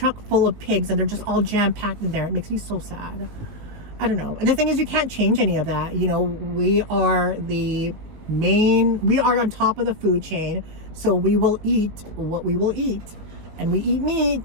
full of pigs and they're just all jam packed in there. It makes me so sad. I don't know. And the thing is, you can't change any of that. You know, we are on top of the food chain, so we will eat what we will eat, and we eat meat.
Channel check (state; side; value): late; left; 19 ms